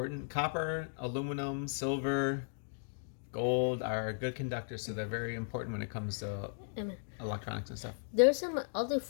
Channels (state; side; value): silent; right; digital silence